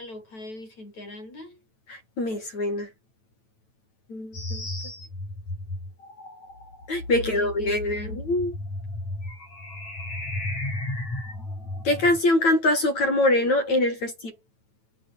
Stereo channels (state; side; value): late; right; 9.1 ms